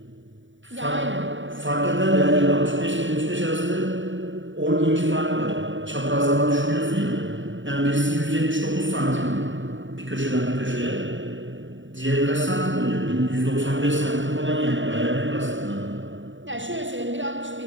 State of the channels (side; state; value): left; late; 0.55 ms